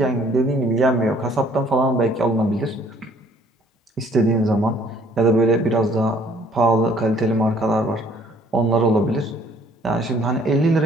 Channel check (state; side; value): normal; both; correlation 0.59